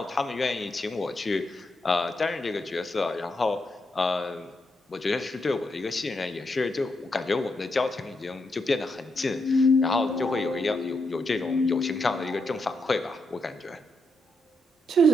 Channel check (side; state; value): both; normal; correlation 0.82